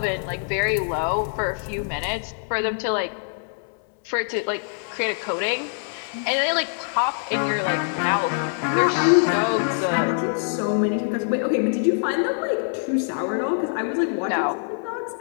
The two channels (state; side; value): silent; right; digital silence